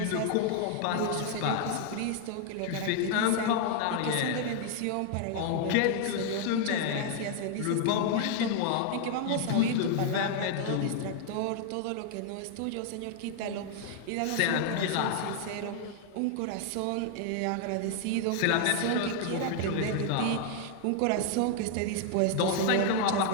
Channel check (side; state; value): both; different; correlation 0.00